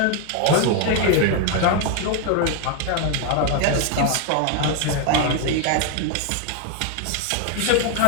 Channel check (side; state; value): both; different; correlation 0.01